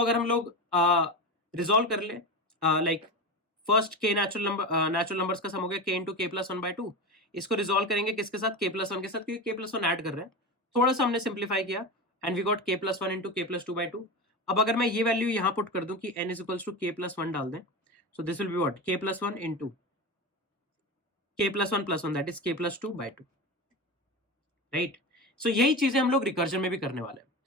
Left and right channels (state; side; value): normal; both; correlation 0.23